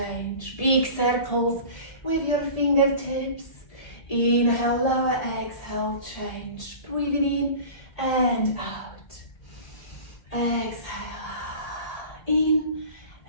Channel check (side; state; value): right; late; 1.7 ms